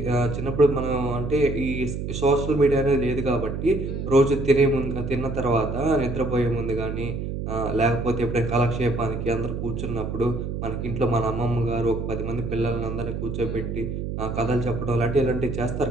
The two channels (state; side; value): noise; right; hum, 4 dB below the sound